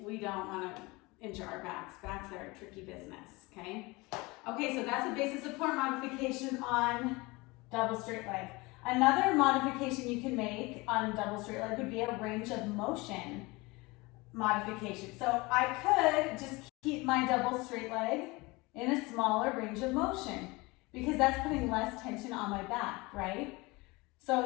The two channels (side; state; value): right; quieter; 23.9 dB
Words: want to injure our backs. Backs are a tricky business, okay? Okay, so that's a basic support modification on double straight leg. Another modification you can make on double straight leg would be a range of motion modification. So I could just keep my double straight leg in a smaller range of motion because that's putting less tension on my back, right?